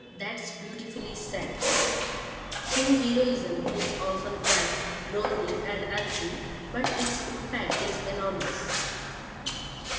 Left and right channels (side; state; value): both; identical; correlation 1.00